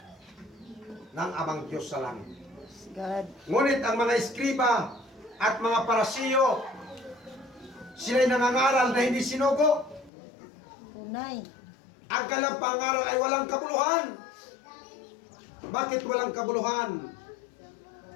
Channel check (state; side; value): drops out; right; at 10.1 s